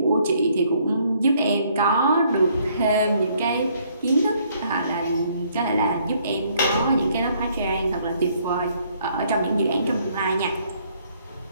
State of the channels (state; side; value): inverted; both; correlation -0.66